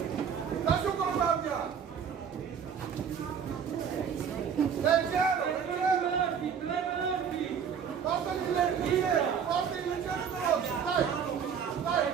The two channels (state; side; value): quieter; left; 7.3 dB